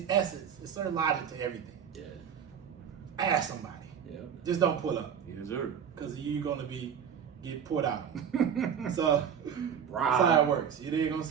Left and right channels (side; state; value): left; quieter; 8.0 dB